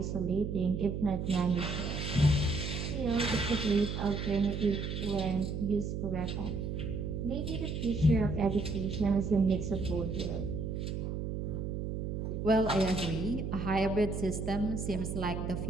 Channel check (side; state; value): right; noise; hum, 3 dB below the sound